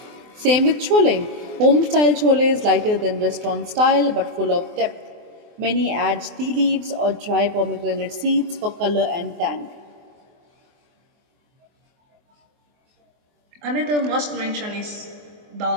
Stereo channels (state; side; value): late; left; 24 ms